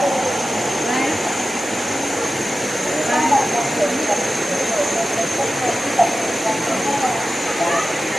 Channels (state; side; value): normal; both; correlation 0.94